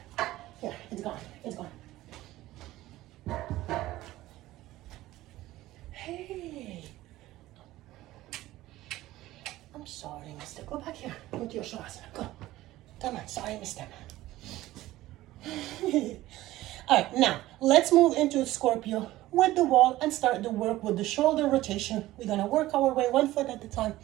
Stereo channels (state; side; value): quieter; left; 16.3 dB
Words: Here, it's gone, it's gone. Hey. I'm sorry, mister. Go back here. Go to your Shavasana. Go. Come on, sorry, mister. All right, now let's move into Scorpio with the wall and start the work with the shoulder rotation. We're gonna work our way one foot at a time.